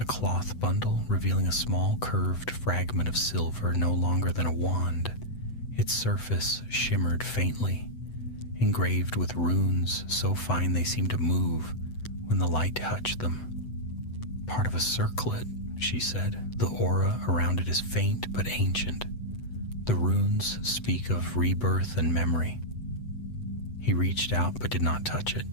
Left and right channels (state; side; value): late; right; 8.0 ms